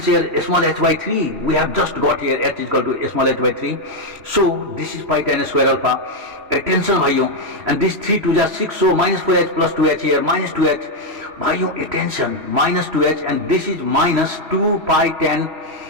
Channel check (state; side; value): late; left; 3.1 ms